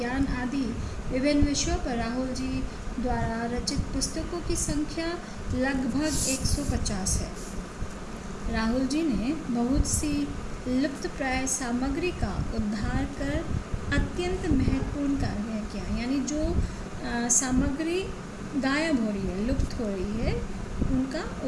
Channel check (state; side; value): identical; both; correlation 1.00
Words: आदि विभिन्न विषयों पर राहुल जी द्वारा रचित पुस्तकों की संख्या लगभग 150 है। राहुल जी ने बहुत सी लुप्तप्राय सामग्री का उद्धार कर अत्यंत महत्वपूर्ण कार्य किया। यानी जो सामग्री गायब हो रही है, लुप्त हो रही है, उनका